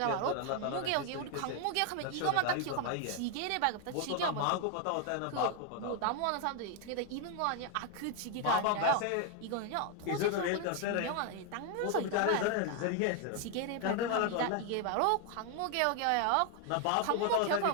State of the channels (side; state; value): both; different; correlation 0.01